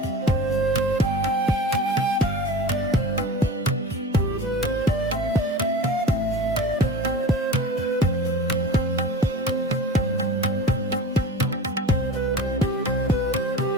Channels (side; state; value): both; normal; correlation 0.35